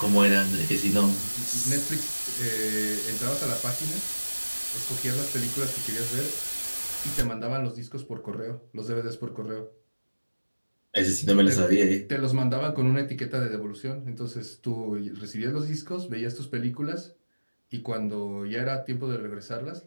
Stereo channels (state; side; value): inverted; both; correlation -1.00